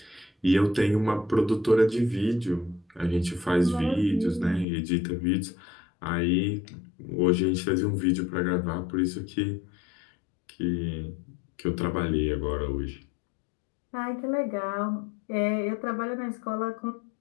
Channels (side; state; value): right; drops out; at 4.7 s